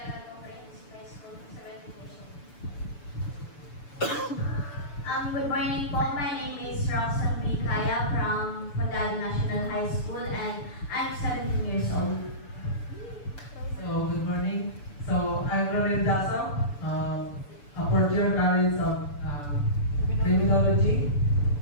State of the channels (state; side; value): late; right; 6.9 ms